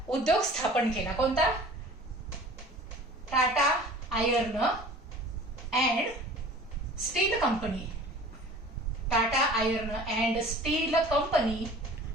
उद्योग स्थापन केला. कोणता? Tata iron and still company. Tata iron and still company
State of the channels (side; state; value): both; normal; correlation 0.45